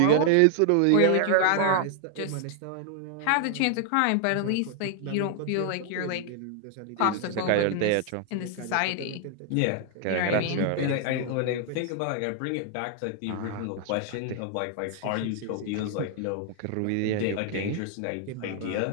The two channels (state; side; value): different; both; correlation 0.00